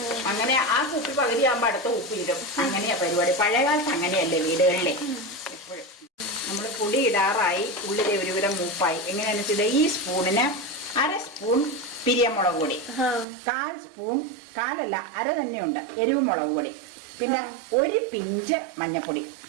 അങ്ങനെ ആ കുപ്പി പകുതിയാകുമ്പോൾ അടുത്ത കുപ്പി ഇടും. അങ്ങനെയാ പരിപാടി. പഴയകാലത്ത് അങ്ങനെയല്ലേ വീടുകളിലെ. എപ്പോഴും നമ്മൾ പൊടി ഇടാറായി, ഉള്ളിലെ ഒരുവിധം മൂപ്പായി. എങ്ങനെയാണെന്ന് വെച്ചാൽ ഈ സ്പൂണിന് 1/2 സ്പൂൺ പിരിയമുളക് പൊടി, 1/4 സ്പൂൺ, 1/4 അര തന്നെയുണ്ട് എരിവ് മുളക് പൊടി, പിന്നെ 1 പിഞ്ച് മഞ്ഞപ്പൊടി.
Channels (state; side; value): drops out; left; at 13.2 s